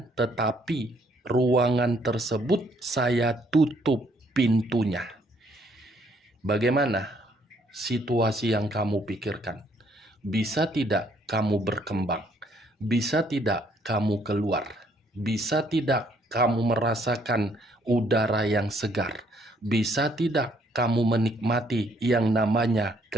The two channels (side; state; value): both; normal; correlation 0.66